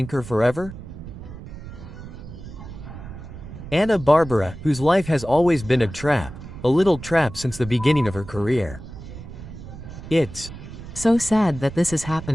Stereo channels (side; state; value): right; noise; rumble, 13 dB below the sound